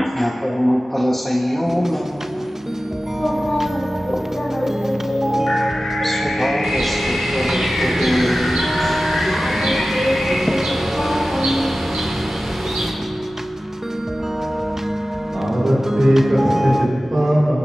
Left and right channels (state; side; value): normal; both; correlation 0.95